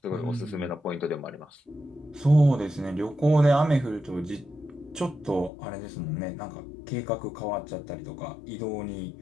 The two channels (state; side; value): drops out; right; at 5.5 s